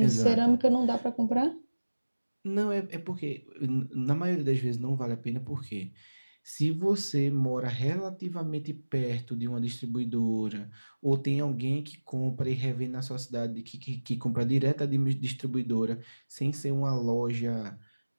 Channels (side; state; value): both; inverted; correlation -1.00